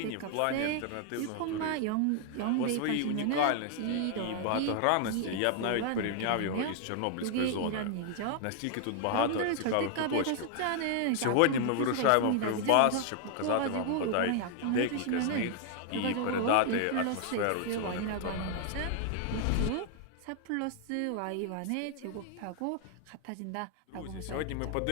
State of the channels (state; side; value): different; both; correlation 0.00